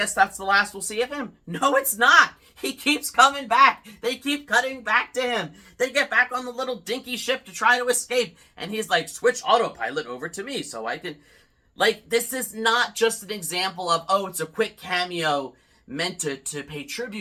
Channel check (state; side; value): identical; both; correlation 1.00